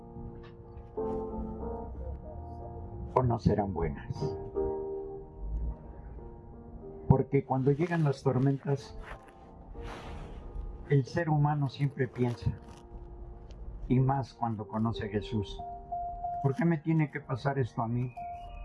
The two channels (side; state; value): both; identical; correlation 1.00